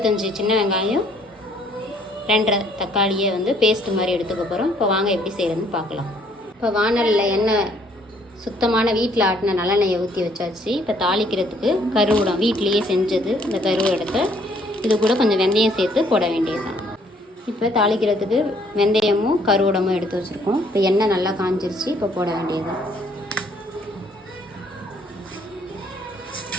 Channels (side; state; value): both; normal; correlation 0.64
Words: சின்ன வெங்காயம், 2 தக்காளியை வந்து பேஸ்ட்டு மாதிரி எடுத்துக்க போகிறோம். இப்போ வாங்க எப்படி செய்கிறதுன்னு பார்க்கலாம். இப்போ வானலில் எண்ணெய் சுத்தமான வீட்டில் ஆட்டின நல்லெண்ணெயை ஊற்றி வச்சாச்சு. இப்போ தாளிக்கிறதுக்கு கருவடம் வீட்டிலையே செஞ்சது, இந்த கருவடத்தை இது கூட கொஞ்சம் வெந்தயம் சேர்த்து போட வேண்டியது தான். இப்போ தாளிக்கிறதுக்கு வெந்தயமும் கருவடமும் எடுத்து வச்சுருக்கோம். இப்போ எண்ணெய் நல்லா காஞ்சிருச்சு, இப்போ போட வேண்டியது தான்.